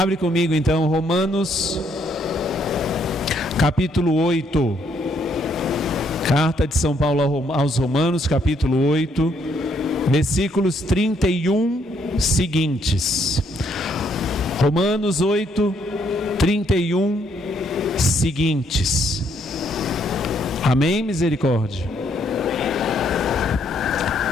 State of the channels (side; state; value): both; normal; correlation 0.71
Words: comigo então Romanos capítulo 8, carta de São Paulo aos Romanos, capítulo 8, versículos 31 seguintes. Romanos 8, 31 seguintes. Amém, misericórdia?